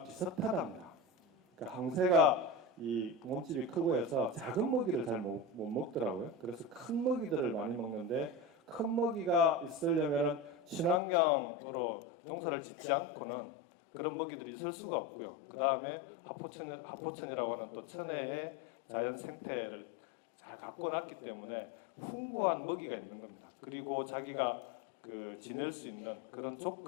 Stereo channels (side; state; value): right; drops out; at 11.0 s